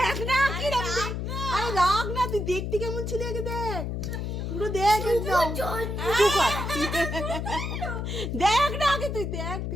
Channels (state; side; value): noise; left; hum, 3 dB below the sound